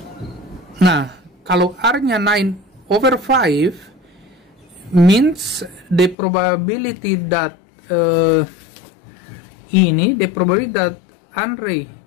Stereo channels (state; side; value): drops out; right; at 6.2 s